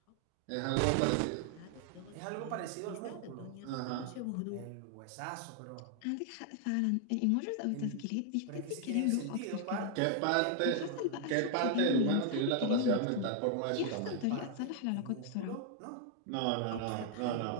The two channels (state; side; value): different; both; correlation 0.00